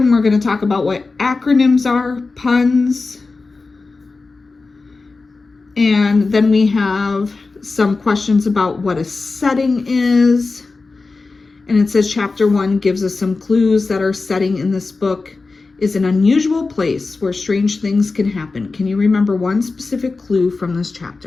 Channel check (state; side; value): quieter; right; 3.9 dB